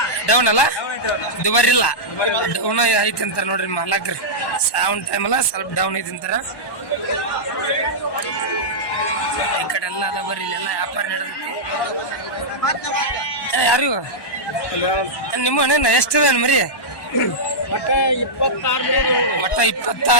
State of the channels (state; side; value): late; right; 1.1 ms